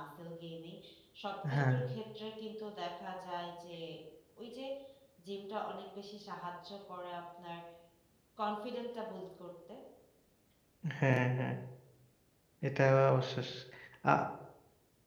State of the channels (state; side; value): identical; both; correlation 1.00